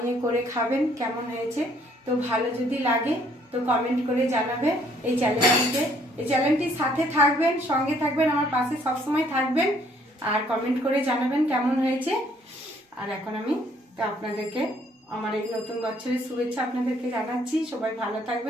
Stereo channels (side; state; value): both; normal; correlation 0.64